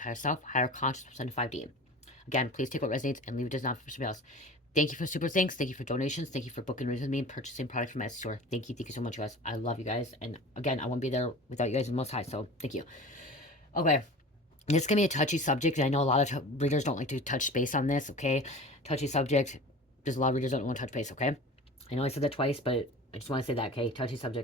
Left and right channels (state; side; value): normal; both; correlation 0.37